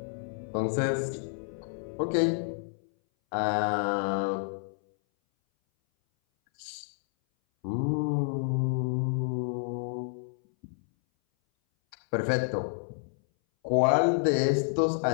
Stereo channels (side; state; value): right; silent; 58 dB below the other